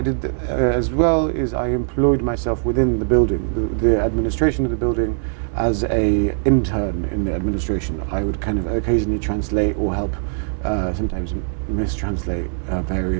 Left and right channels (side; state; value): left; silent; digital silence